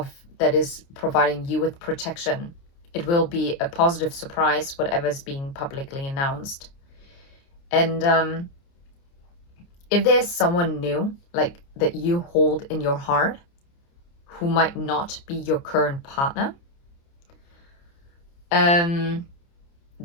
that is providing you with protection. It will be a positive surprise, whatever is being publicly announced. And if there's someone new, like that you hold in your heart, who might not be your current partner, then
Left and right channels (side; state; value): right; late; 29 ms